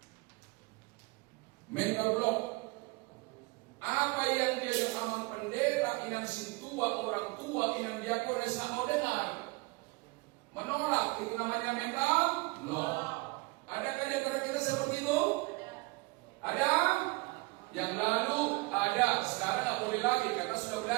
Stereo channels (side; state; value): left; quieter; 25.7 dB